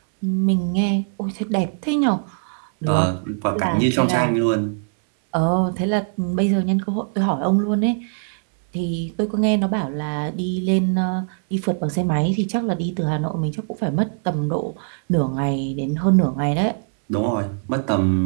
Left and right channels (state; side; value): silent; left; digital silence